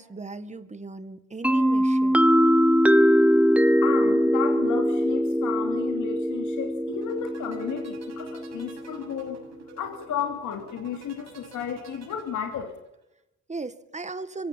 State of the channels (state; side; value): normal; both; correlation 0.89